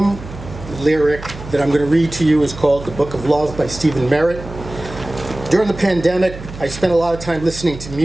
lyric that I'm going to read to you is called The Book of Love by Stephen Merritt. During the pandemic, I spent a lot of time listening to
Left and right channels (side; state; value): right; noise; hum, 13 dB below the sound